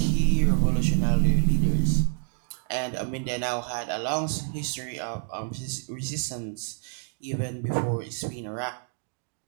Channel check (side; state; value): left; silent; digital silence